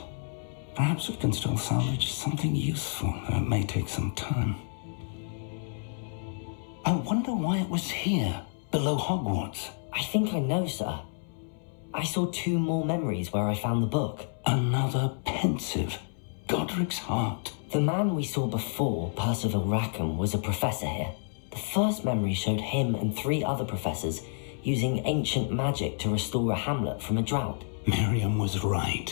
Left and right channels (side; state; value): right; silent; 58 dB below the other